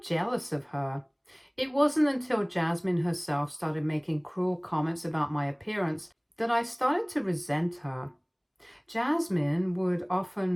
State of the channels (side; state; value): both; identical; correlation 1.00